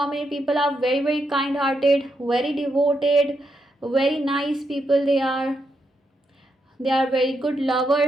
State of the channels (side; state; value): both; normal; correlation 0.81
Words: people are very very kind hearted, very devoted, very nice people. They are very good